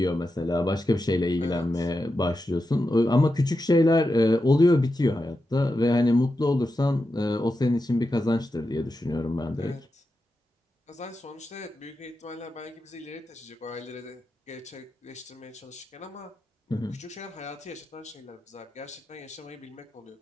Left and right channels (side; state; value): both; normal; correlation 0.89